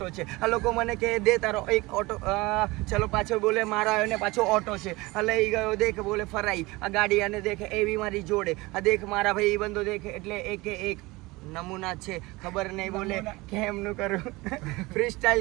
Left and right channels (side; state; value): left; quieter; 22.1 dB